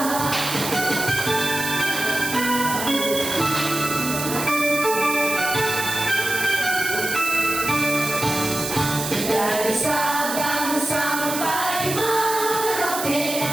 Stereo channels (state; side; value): noise; right; hiss, 5 dB below the sound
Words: Dari Sabang sampai Merauke